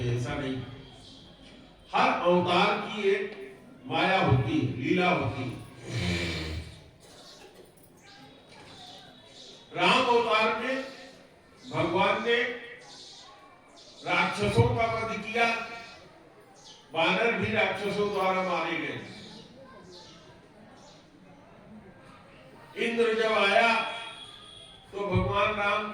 ऐसा नहीं। हर अवतार की एक माया होती है, लीला होती है। राम अवतार में भगवान ने राक्षसों का वध किया, वानर भी राक्षसों द्वारा मारे गए। इंद्र जब आया तो भगवान राम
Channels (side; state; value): both; identical; correlation 1.00